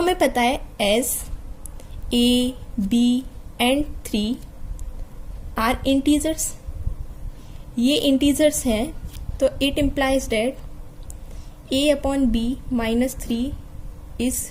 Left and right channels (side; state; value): both; identical; correlation 1.00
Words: पता है as a b and 3 are integers, ये इंटीजर्स हैं, तो it implies that a/b -3 is